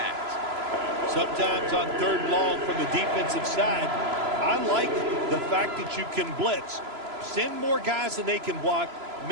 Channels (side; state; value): left; late; 3.0 ms